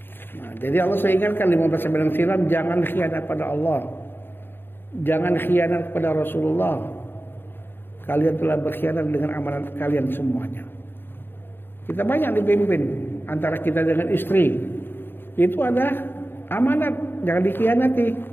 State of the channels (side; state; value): right; late; 0.10 ms